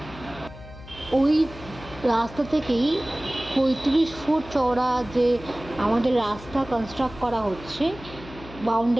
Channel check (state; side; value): noise; left; hum, 16 dB below the sound